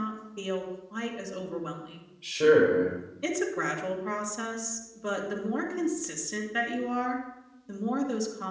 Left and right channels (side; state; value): both; identical; correlation 1.00